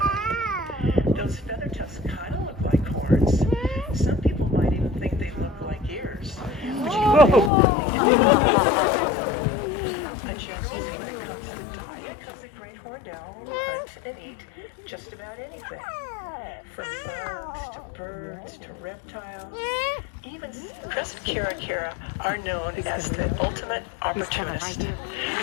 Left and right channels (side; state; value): right; drops out; at 7.5 s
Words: Those feather tufts kind of look like horns. Some people might even think they look like ears. But she's easy when it comes to the diet because the great horned owl will hunt and eat just about anything. From bugs to birds to reptiles. Even Chris and Kara are known as the ultimate opportunist